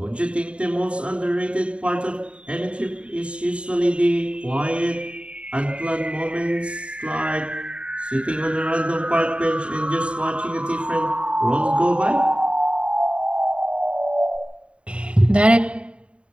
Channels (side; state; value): left; late; 0.059 ms